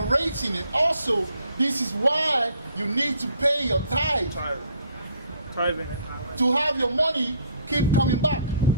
and also this is why you need to pay your tithe. Tithing. To have your money keep coming back.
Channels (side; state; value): both; inverted; correlation -0.61